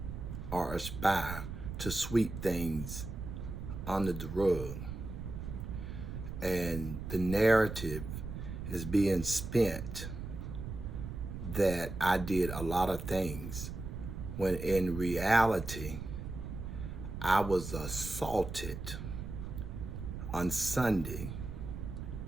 or aspire to sweep things under the rug. And the narrative is being spent that I did a lot of things when in reality, I was assaulted on Sunday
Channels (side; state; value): right; noise; rumble, 7 dB below the sound